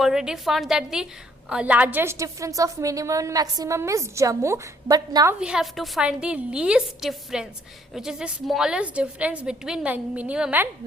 found that the largest difference of minimum and maximum is Jammu, but now we have to find the least difference, which is the smallest difference between minimum and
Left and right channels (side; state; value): both; normal; correlation 0.65